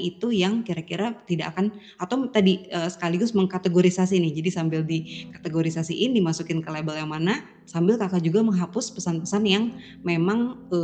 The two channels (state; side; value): identical; both; correlation 1.00